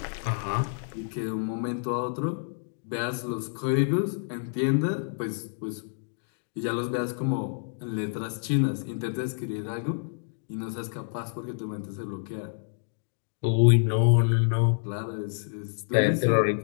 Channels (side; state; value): right; silent; digital silence